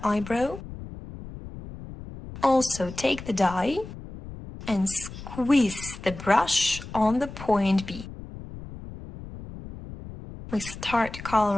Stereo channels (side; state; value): left; noise; rumble, 13 dB below the sound